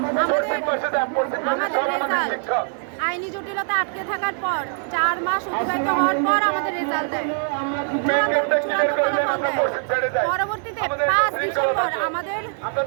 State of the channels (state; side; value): silent; left; 58 dB below the other